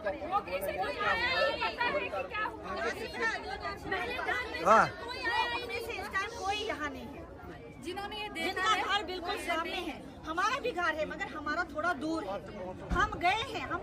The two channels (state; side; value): identical; both; correlation 1.00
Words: हाँ। कोई यहाँ नहीं है जिन्होंने ये देखा है। घर बिल्कुल सामने है, हमारा भी घर है मगर हमारा थोड़ा दूर है। हम गए हैं,